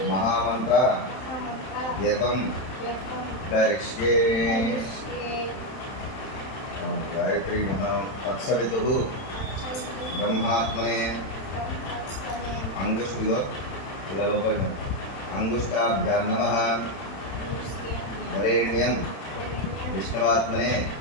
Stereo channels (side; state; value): right; late; 31 ms